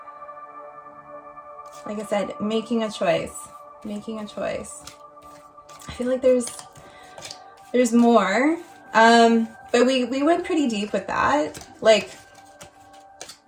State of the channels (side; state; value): both; identical; correlation 1.00